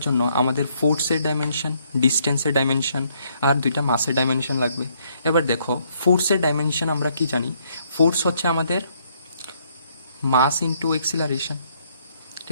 জন্য আমাদের ফোর্সের ডাইমেনশন, ডিস্টেন্সের ডাইমেনশন আর দুইটা মাসের ডাইমেনশন লাগবে। এবার দেখো ফোর্সের ডাইমেনশন আমরা কি জানি, ফোর্স হচ্ছে আমাদের মাস ইন্টু এক্সিলারেশন।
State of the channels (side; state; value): both; inverted; correlation -0.69